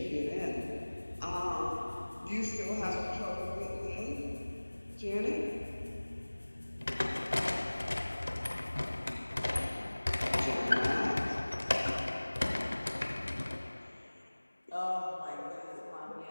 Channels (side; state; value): both; inverted; correlation -1.00